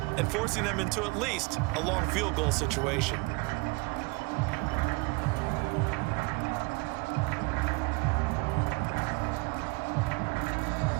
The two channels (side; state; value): left; quieter; 27.7 dB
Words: and forcing them into at least a long field goal situation.